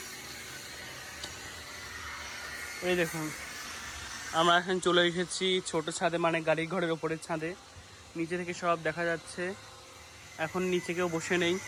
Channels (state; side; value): identical; both; correlation 1.00